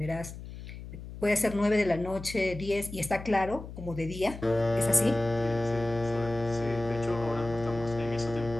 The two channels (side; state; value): left; noise; hum, 12 dB below the sound